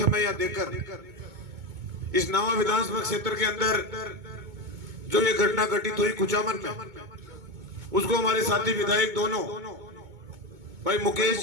यहाँ देकर इस नावा विधानसभा क्षेत्र के अंदर जो ये घटना घटित हुई कुचामन में, उसको हमारे साथी विधायक दोनों भाई मुकेश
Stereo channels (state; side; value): late; left; 2.2 ms